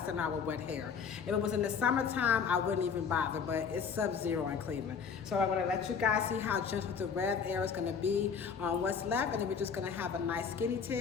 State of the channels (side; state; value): right; quieter; 6.4 dB